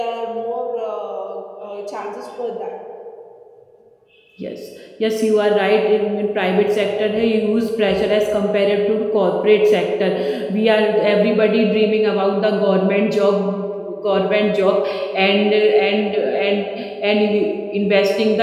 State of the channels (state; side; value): identical; both; correlation 1.00